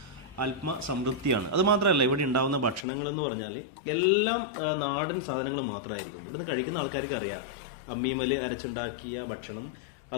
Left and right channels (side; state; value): right; drops out; at 2.9 s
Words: ആത്മസംതൃപ്തിയാണ്. അത് മാത്രമല്ല, ഇവിടെ ഉണ്ടാകുന്ന ഭക്ഷണങ്ങളെന്ന് പറഞ്ഞാൽ എല്ലാം നാടൻ സാധനങ്ങൾ മാത്രമായിരിക്കും. ഇവിടുന്ന് കഴിക്കുന്ന ആൾക്കാർക്ക് അറിയാം അമ്മീമൽ അരച്ചുണ്ടാക്കിയ ഭക്ഷണം,